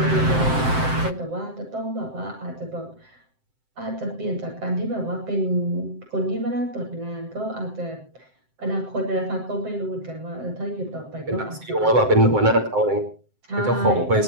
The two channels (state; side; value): late; left; 7.7 ms